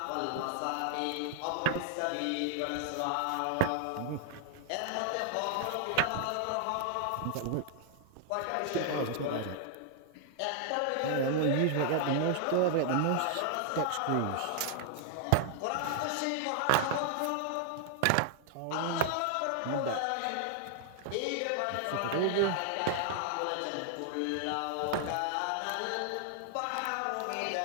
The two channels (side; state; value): both; different; correlation 0.00